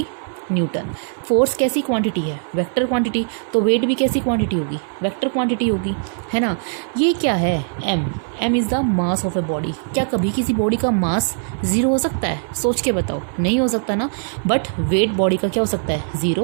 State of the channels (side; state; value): left; silent; 58 dB below the other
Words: न्यूटन। फोर्स कैसी क्वांटिटी है, वेक्टर क्वांटिटी, तो वेट भी कैसी क्वांटिटी होगी, वेक्टर क्वांटिटी होगी, है ना। ये क्या है, m is the mass of a body. क्या कभी किसी बॉडी का मास ज़ीरो हो सकता है, सोच के बताओ, नहीं हो सकता ना। बट वेट बॉडी का क्या हो सकता है,